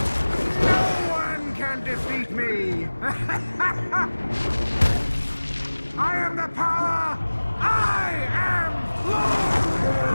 No one can defeat me! I am the power! I am Lord!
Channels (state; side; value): inverted; both; correlation -1.00